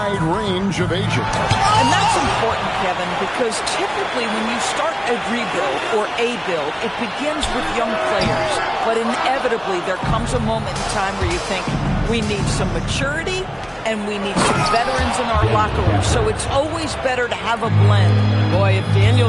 range of ages. And that's important, Kevin, because typically when you start a rebuild or a build, it begins with young players. But inevitably, there comes a moment in time where you think, we need some maturity and we need some veterans in our locker room. So it's always better to have a blend. Boy, if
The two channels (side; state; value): both; identical; correlation 1.00